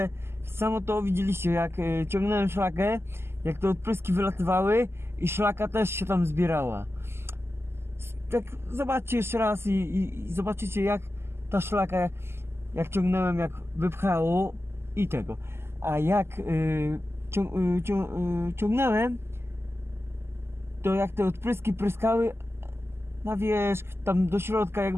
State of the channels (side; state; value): left; late; 0.12 ms